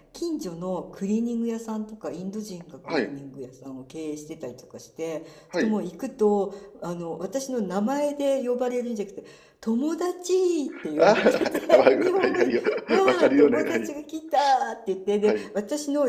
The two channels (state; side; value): identical; both; correlation 1.00